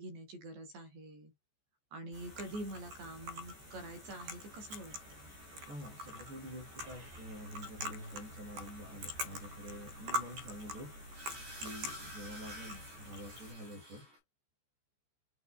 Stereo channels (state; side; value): late; left; 14 ms